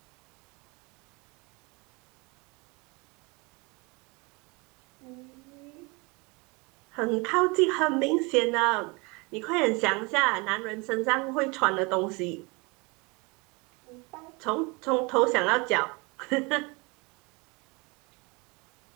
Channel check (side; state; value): left; quieter; 28.1 dB